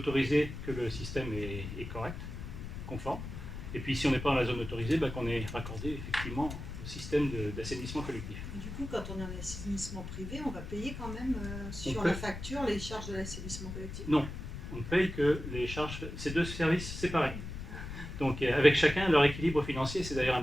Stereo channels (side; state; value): left; noise; rumble, 8 dB below the sound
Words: que le système est correct, conforme, et puis si on n'est pas dans la zone autorisée, qu'on est raccordé effectivement au système d'assainissement collectif. Et du coup, quand on est en assainissement privé, on va payer quand même sur la facture les charges de l'assainissement collectif? Non, on ne paye que les charges, c'est deux services séparés. Donc avec chacun leur équilibre financier, c'est d'ailleurs un